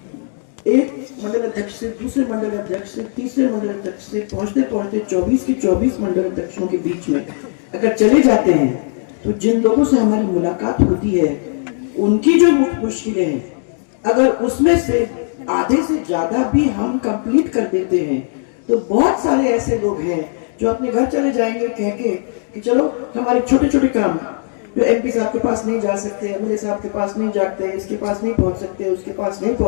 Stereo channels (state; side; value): silent; right; 67 dB below the other